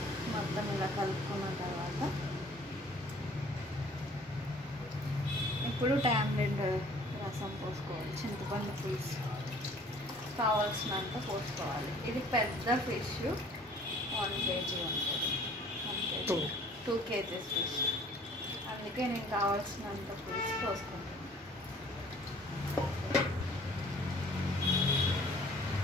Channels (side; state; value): both; normal; correlation 0.53